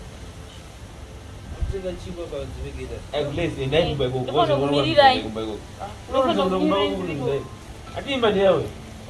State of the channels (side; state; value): both; identical; correlation 1.00